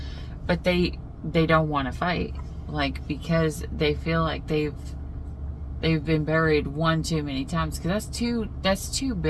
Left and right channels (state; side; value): identical; both; correlation 1.00